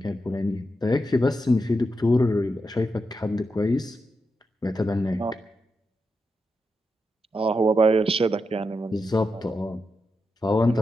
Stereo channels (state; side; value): normal; both; correlation 0.86